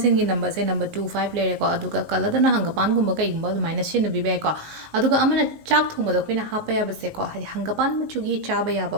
gi number se number 25 le ko aduga kala da na hanga pan gumba kai gumba da minus sin bi be ko aduga amana chak thuma da khoina hapa ya ba se ko hadi hanga pan ma chugi cha ba ya ba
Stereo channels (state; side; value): late; left; 19 ms